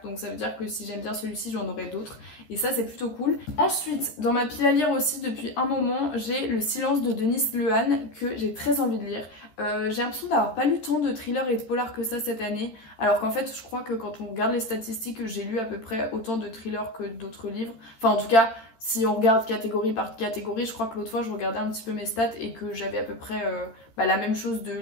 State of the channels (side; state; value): right; late; 13 ms